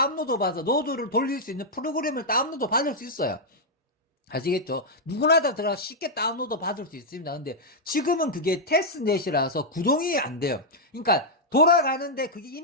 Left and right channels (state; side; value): normal; both; correlation -0.04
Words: 받아서 노드를 돌릴 수 있는 프로그램을 다운로드 받을 수 있어요. 아시겠죠? 누구나 다 들어가 쉽게 다운로드 받을 수 있습니다. 근데 지금은 그게 테스트넷이라서 구동이 안 돼요. 그러니까 돌아가는데 그게